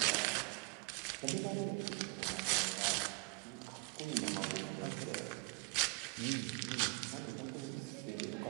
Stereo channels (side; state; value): left; quieter; 29.2 dB